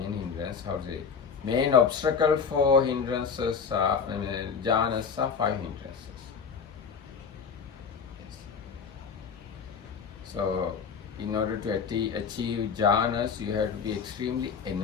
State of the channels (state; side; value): quieter; right; 6.2 dB